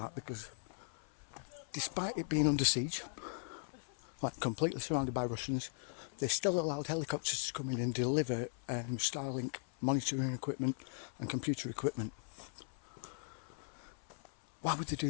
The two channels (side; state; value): right; silent; 52 dB below the other